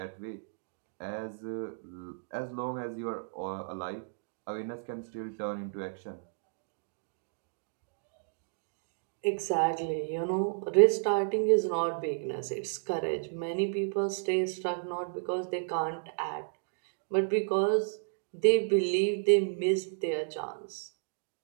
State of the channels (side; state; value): left; silent; digital silence